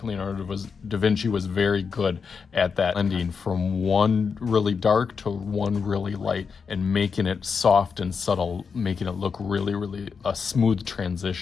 Leonardo da Vinci was very good at that, blending from one really dark to one really light and making it soft and subtle, making it look really, really a smooth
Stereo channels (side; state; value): right; quieter; 5.7 dB